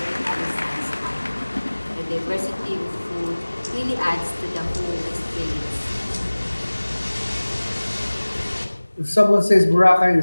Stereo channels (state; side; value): inverted; both; correlation -1.00